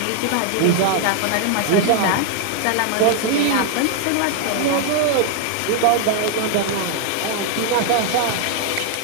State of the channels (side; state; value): both; different; correlation 0.00